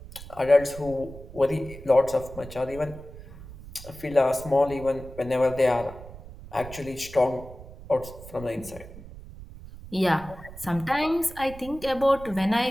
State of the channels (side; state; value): right; noise; rumble, 15 dB below the sound